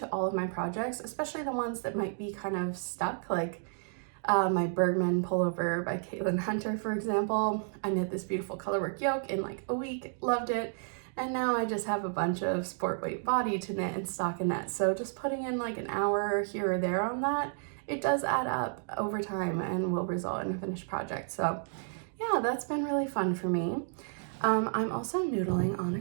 all of my projects, especially the ones that might be kind of stuck, like my Bergman pullover by Caitlin Hunter, for example. I knit this beautiful colorwork yoke in like a week, loved it, and now I just have a bunch of sport weight body to knit and stockinette. So just putting in like an hour here or there on that, it does add up over time and will result in a finished project. So yeah, that's been really fun for me. I'm also noodling on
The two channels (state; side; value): silent; left; digital silence